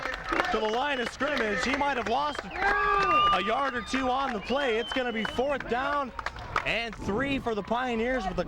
line of scrimmage. He might have lost a yard or 2 on the play. It's going to be 4th down and 3 for the Pioneers with the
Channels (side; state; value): both; identical; correlation 1.00